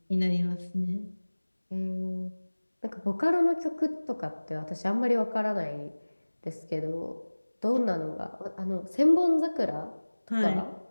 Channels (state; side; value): inverted; both; correlation -1.00